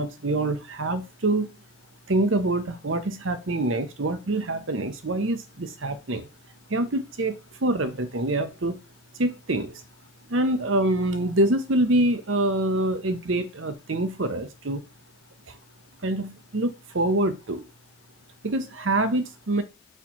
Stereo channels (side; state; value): both; normal; correlation 0.22